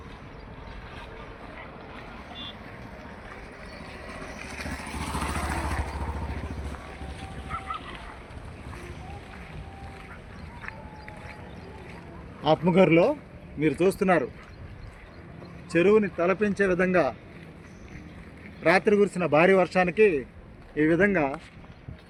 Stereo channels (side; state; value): both; identical; correlation 1.00